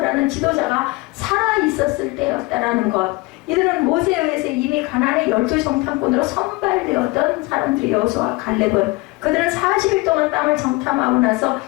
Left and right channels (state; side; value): quieter; right; 23.6 dB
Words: 지도자가 살아 있었을 때였다라는 것. 이들은 모세에 의해서 이미 가나안의 12정탐꾼으로 선발되었던 사람들이 여호수아와 갈렙은 그들은 40일 동안 땅을 정탐하고 나서